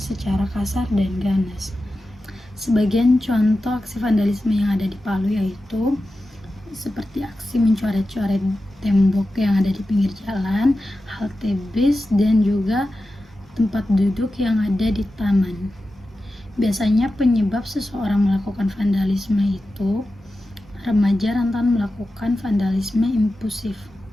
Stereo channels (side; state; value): both; normal; correlation 0.93